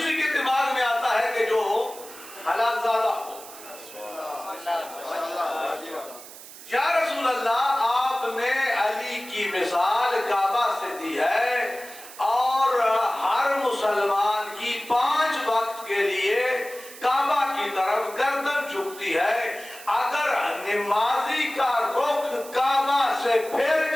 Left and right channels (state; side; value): noise; right; hiss, 16 dB below the sound